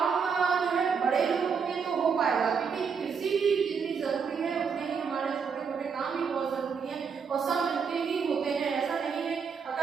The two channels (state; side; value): quieter; left; 6.1 dB